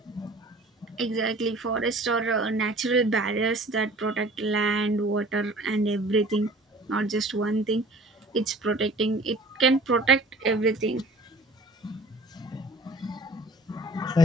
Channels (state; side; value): normal; both; correlation 0.49